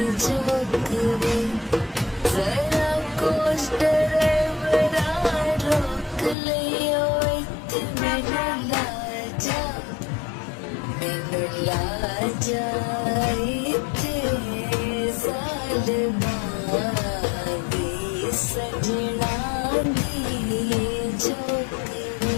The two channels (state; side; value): drops out; right; at 6.4 s